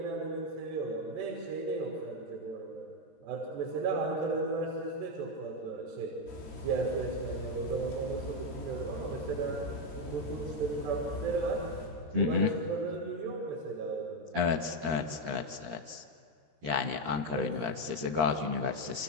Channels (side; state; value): left; late; 13 ms